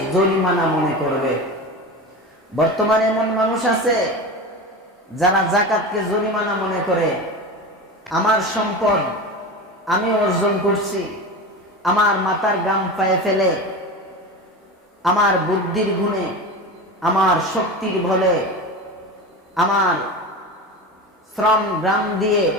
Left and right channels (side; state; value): both; normal; correlation 0.27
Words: জরিমানা মনে করবে। বর্তমানে এমন মানুষ আছে যারা যাকাতকে জরিমানা মনে করে। আমার সম্পদ আমি অর্জন করছি, আমার মাথার ঘাম পায়ে ফেলে, আমার বুদ্ধির গুণে, আমার শক্তির বলে, আমার শ্রম গ্রাম দিয়ে